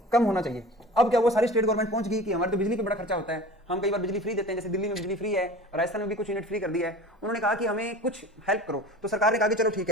कम होना चाहिए। अब क्या वो सारी स्टेट गवर्नमेंट पहुंच गई कि हमारे तो बिजली पे बड़ा खर्चा होता है, हम कई बार बिजली फ्री देते हैं, जैसे दिल्ली में बिजली फ्री है, राजस्थान में भी कुछ यूनिट फ्री कर दिया है। उन्होंने कहा कि हमें कुछ हेल्प करो। तो सरकार ने कहा कि चलो ठीक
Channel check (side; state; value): both; normal; correlation 0.39